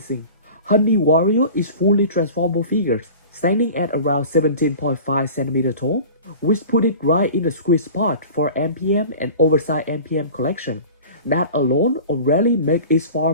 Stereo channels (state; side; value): inverted; both; correlation -0.39